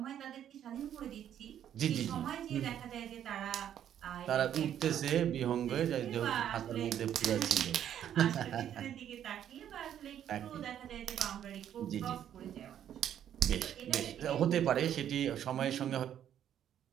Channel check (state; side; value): quieter; left; 10.2 dB